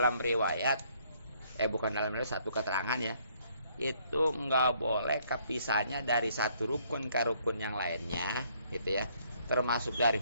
riwayat, bukan dalam riwayat, satu keterangan ya, itu nggak boleh kepisahnya dari satu rukun ke rukun yang lainnya, gitu ya. Termasuk dari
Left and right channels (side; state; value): both; inverted; correlation -0.66